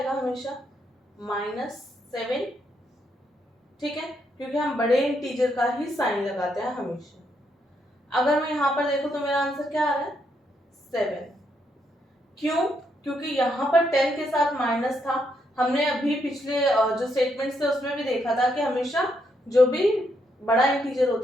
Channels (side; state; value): both; normal; correlation 0.77